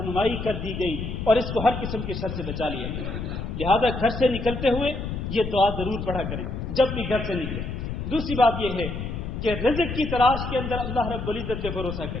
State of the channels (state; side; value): noise; left; rumble, 5 dB below the sound